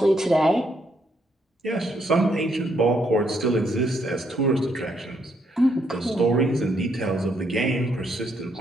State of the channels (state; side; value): normal; both; correlation 0.74